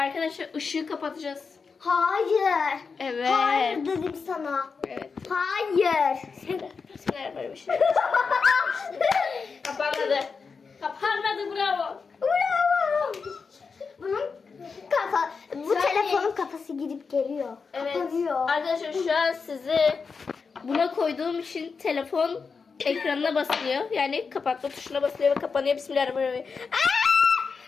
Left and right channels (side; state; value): right; quieter; 5.1 dB